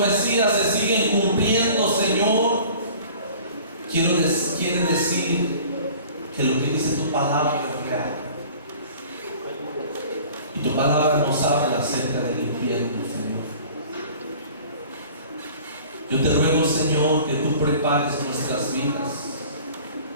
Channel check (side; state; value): both; inverted; correlation -0.46